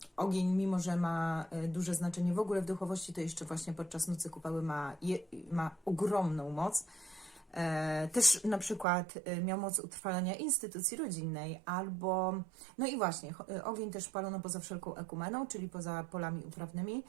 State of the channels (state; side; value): drops out; left; at 8.8 s